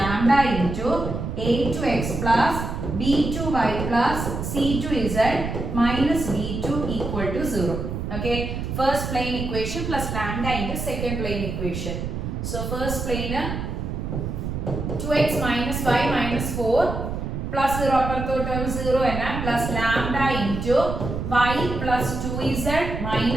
into a2x plus b2y plus c2z minus d2 equal to 0. Okay, first plane equation plus lambda into second plane equation. So first plane 2x minus y minus 4 plus 0 അപ്പുറത്തോട്ട് 0 തന്നെ plus lambda into y plus 2z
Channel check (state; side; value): noise; right; rumble, 4 dB below the sound